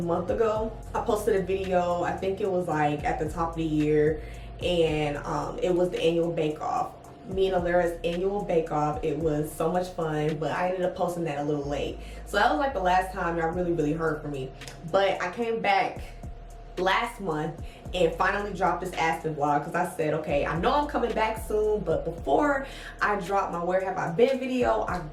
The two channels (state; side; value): identical; both; correlation 1.00